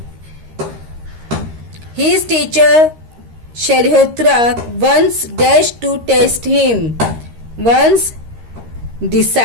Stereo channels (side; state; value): left; late; 13 ms